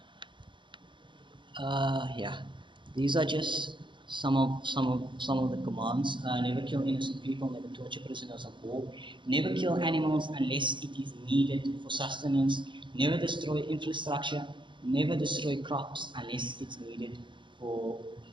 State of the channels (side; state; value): left; late; 0.23 ms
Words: yeah, these are just some of the commands. Never kill innocent people. Never torture prisoners of war. Never kill animals unless it is needed for sustenance. Never destroy infrastructure. Never destroy crops unless it's needed for